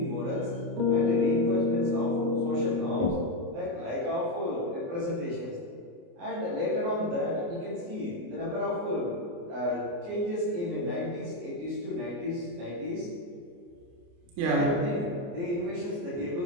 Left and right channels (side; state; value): left; late; 29 ms